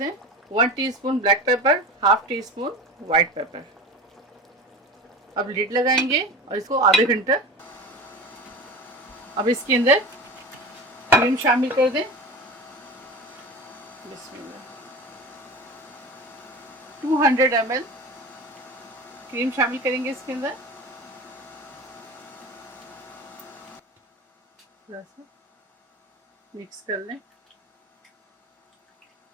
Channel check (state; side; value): normal; both; correlation 0.32